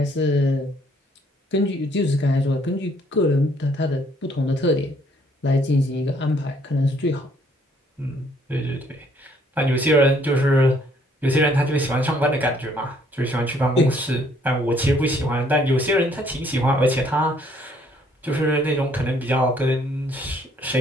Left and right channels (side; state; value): both; normal; correlation 0.64